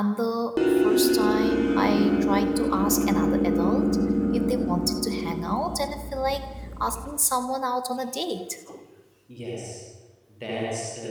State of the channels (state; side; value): identical; both; correlation 1.00